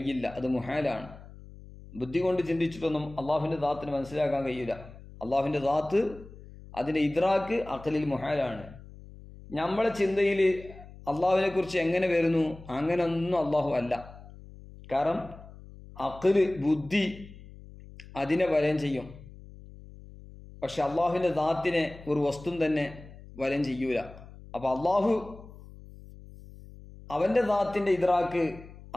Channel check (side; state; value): left; noise; hum, 18 dB below the sound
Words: അത് മുഹാലാണ്. ബുദ്ധി കൊണ്ട് ചിന്തിച്ചിട്ടൊന്നും അള്ളാഹുവിൻ്റെ ദാത്തിന് മനസ്സിലാക്കാൻ കഴിയില്ല. അള്ളാഹുവിൻ്റെ ദാത്ത്, അതിൻ്റെ ഇദ്രാക്ക് അഖലിൽ മുഹാലാണ്. നമ്മളെ ചിന്തയിൽ അള്ളാഹുവിനെ കുറിച്ച് എങ്ങനെ വരുന്നു, അങ്ങനെയൊന്നും അള്ളാഹു അല്ല. കാരണം അഖല്, ബുദ്ധി അതിനെ വലയം ചെയ്യും. പക്ഷെ അള്ളാഹുവിൻ്റെ ദാത്തിനെ ഒരു വസ്തു തന്നെ വലയം ചെയ്യൂല. അപ്പൊ അള്ളാഹു അവന്റെ ദാത്തിന്റെ ഇദ്രാക്ക്